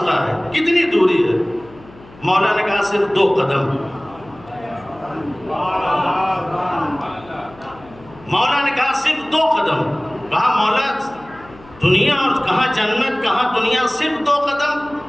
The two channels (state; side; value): noise; left; hum, 23 dB below the sound